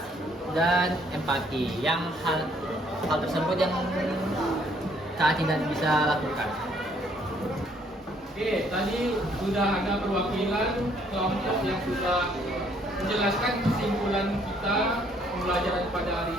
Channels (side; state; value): both; normal; correlation 0.65